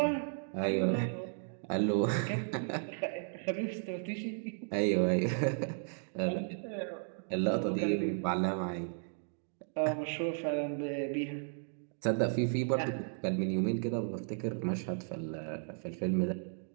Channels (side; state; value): left; silent; digital silence